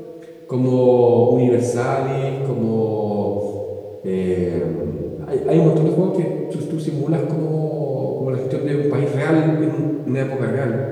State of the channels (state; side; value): identical; both; correlation 1.00